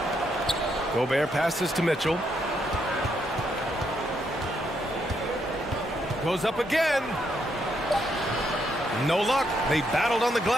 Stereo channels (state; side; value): normal; both; correlation 0.77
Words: Gobert passes to Mitchell. Goes up again. No luck. They battled on the